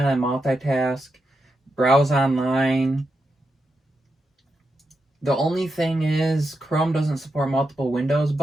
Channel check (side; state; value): both; normal; correlation 0.86